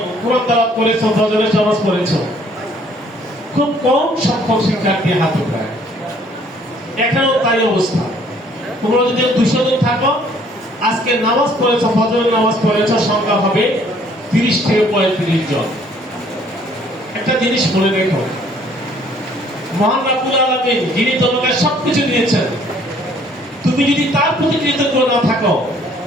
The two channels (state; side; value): normal; both; correlation 0.61